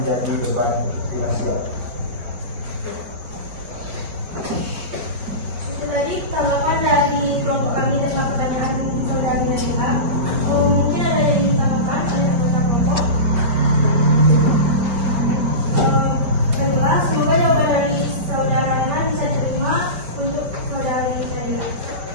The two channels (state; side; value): late; left; 5.1 ms